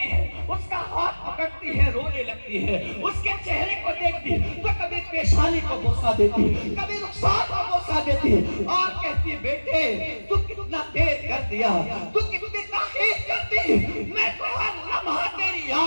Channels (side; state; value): both; inverted; correlation -1.00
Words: ہے اس کا ہاتھ پکڑتی ہے، رونے لگتی ہے، اس کے چہرے کو دیکھتی تو کبھی پیشانی کو بوسہ دیتی، کبھی رخسار کو بوسہ دیتی اور کہتی بیٹے تو کتنا دیر کر دیا، تو کتنی تاخیر کرتی، میں تو ہر لمحہ تیری